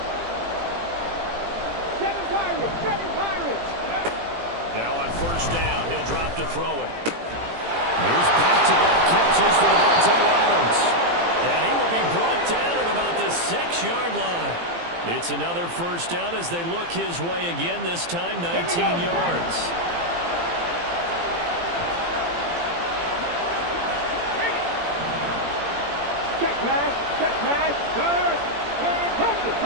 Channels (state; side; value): late; left; 18 ms